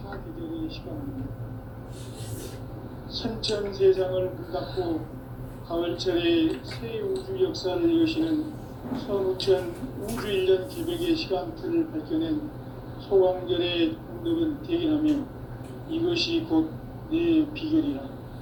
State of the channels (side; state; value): both; identical; correlation 1.00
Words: 사계절의 시간입니다. 선천 세상을 문 닫고 가을철에 새 우주 역사를 여시는 선우천 우주일년 기백의 시간틀을 밝혀낸 소광절의 공덕은 대견하며 이것이 곧 내 비결이라.